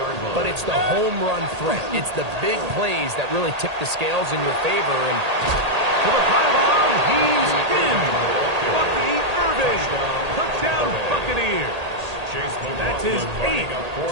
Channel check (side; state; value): left; late; 1.8 ms